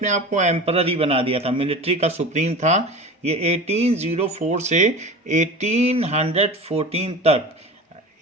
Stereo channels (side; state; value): both; normal; correlation 0.33